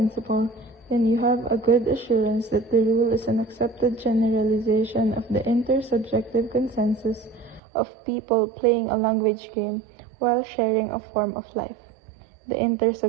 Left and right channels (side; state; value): left; drops out; at 7.6 s